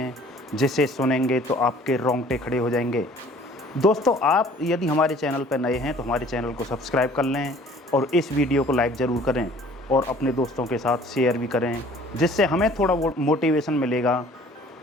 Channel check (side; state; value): both; normal; correlation 0.52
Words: जिसे सुनेंगे तो आपके रोंगटे खड़े हो जाएंगे। दोस्तों, आप यदि हमारे चैनल पर नए हैं तो हमारे चैनल को सब्सक्राइब कर लें और इस वीडियो को लाइक ज़रूर करें और अपने दोस्तों के साथ शेयर भी करें, जिससे हमें थोड़ा मोटिवेशन मिलेगा